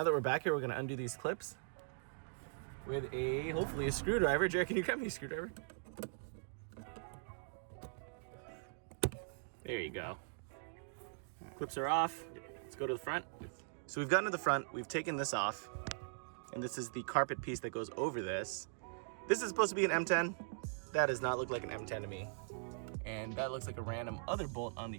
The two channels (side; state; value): left; silent; digital silence